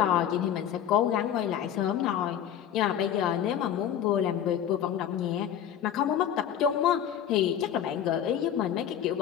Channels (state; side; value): quieter; right; 9.8 dB